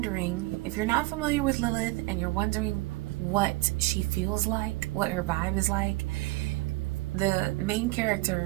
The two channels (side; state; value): left; quieter; 21.0 dB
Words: if you're not familiar with Lilith and you're wondering what she feels like, what her vibe is like, the main